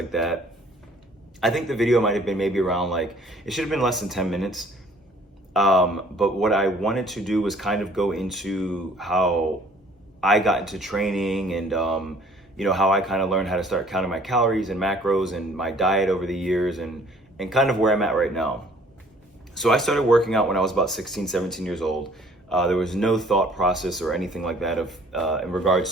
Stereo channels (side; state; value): both; normal; correlation 0.56